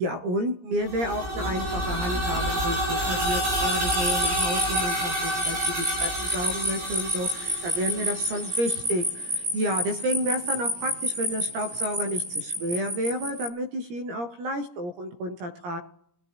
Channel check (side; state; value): left; late; 17 ms